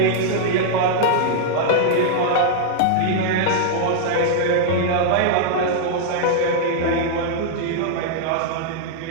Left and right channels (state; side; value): different; both; correlation -0.01